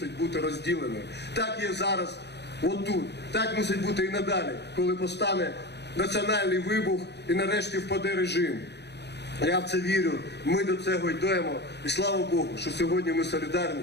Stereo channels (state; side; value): late; right; 0.49 ms